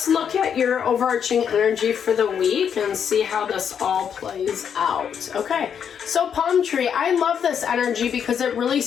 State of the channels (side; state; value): right; quieter; 7.8 dB